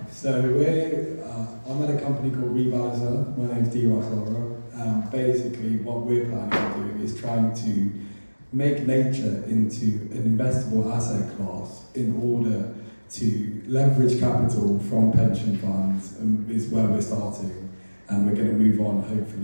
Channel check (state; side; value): inverted; both; correlation -1.00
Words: up. So I'm at a company called Revalizer. My name's D-Ross Laura. Basically, what we're planning to do is trying to make nature into an investable asset class in order to leverage capital from pension funds, is where we're starting, and we're going to move on